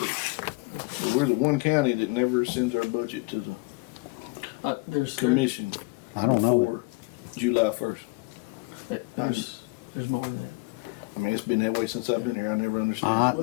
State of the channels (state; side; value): quieter; right; 27.2 dB